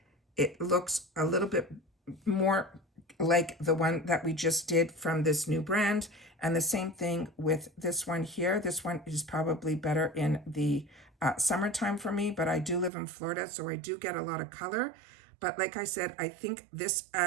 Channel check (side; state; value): left; drops out; at 12.9 s